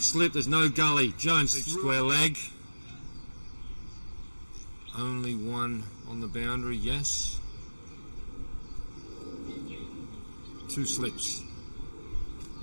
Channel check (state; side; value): inverted; both; correlation -1.00